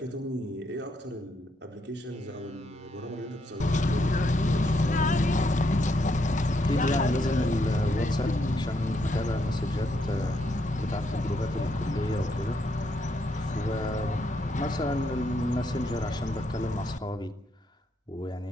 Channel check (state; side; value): normal; both; correlation 0.76